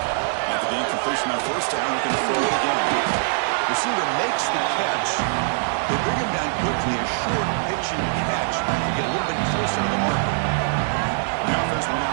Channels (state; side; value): silent; left; digital silence